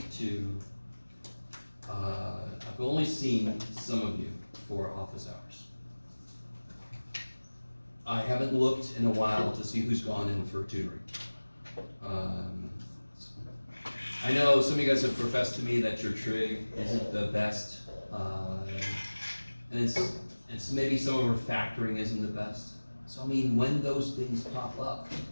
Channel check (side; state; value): both; inverted; correlation -1.00